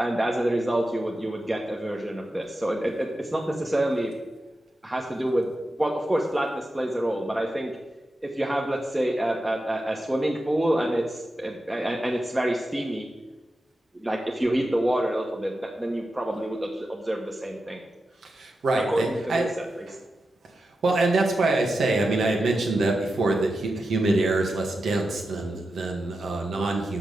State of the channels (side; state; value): both; normal; correlation 0.91